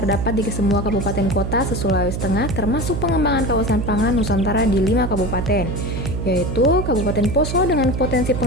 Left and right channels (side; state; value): right; noise; hum, 3 dB below the sound